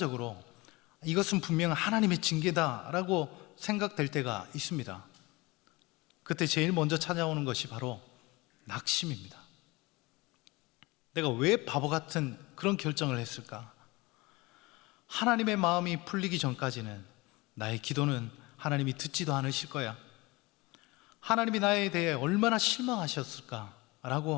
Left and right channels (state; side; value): quieter; right; 23.1 dB